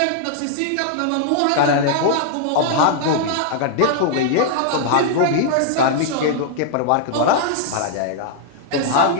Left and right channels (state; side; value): different; both; correlation -0.01